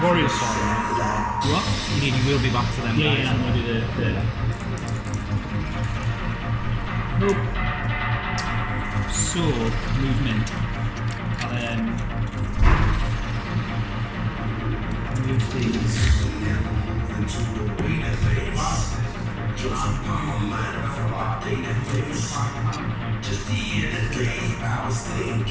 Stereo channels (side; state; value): both; identical; correlation 1.00